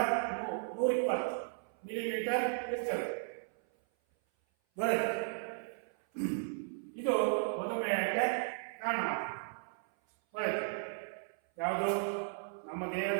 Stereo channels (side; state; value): left; silent; 54 dB below the other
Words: 120 ಮಿಲಿಮೀಟರ್ ಇರ್ತದೆ. ಇದು ಮಧುಮೇಹಕ್ಕೆ ಕಾರಣವಾಗುತ್ತದೆ. ಯಾವುದು ನಮ್ಮ